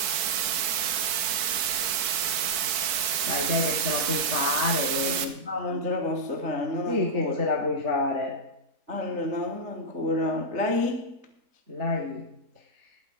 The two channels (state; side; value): late; left; 4.5 ms